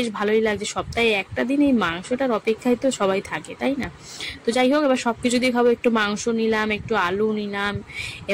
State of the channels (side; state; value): both; identical; correlation 1.00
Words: ভালোই লাগছে। সপ্তাহে একটা দিন এই মাংসটার অপেক্ষায় তো সবাই থাকে, তাই না? তো যাই হোক, এবার সবকিছু দিয়ে খাবো। একটু মাংস নিলাম, একটু আলু নিলাম,